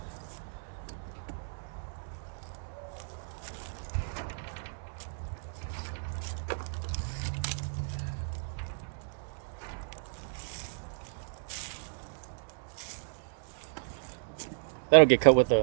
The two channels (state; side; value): silent; left; digital silence